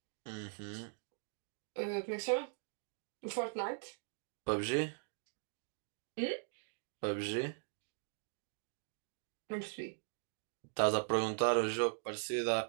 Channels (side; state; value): left; silent; digital silence